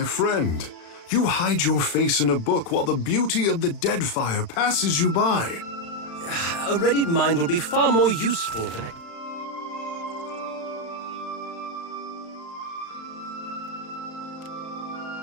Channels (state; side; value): late; right; 35 ms